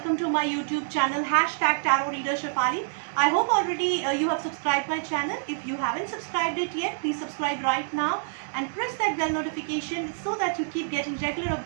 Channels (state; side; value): silent; left; digital silence